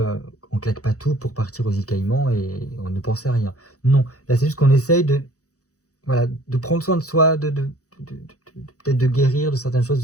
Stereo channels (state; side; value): late; right; 0.66 ms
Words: on claque pas tout pour partir aux îles Caïmans et on ne pense à rien. Non, là c'est juste qu'on essaye de, voilà, de prendre soin de soi, peut-être de guérir de certaines choses,